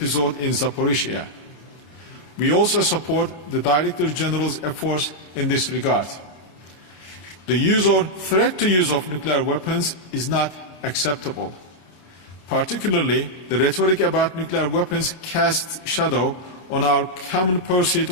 in Zaporizhzhia. We also support the Director General's efforts in this regard. The use or threat to use of nuclear weapons is not acceptable. Particularly, the rhetoric about nuclear weapons casts shadow on our common pursuit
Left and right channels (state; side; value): late; right; 33 ms